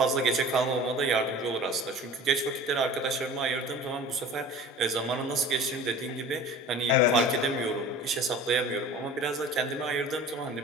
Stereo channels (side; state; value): both; normal; correlation 0.41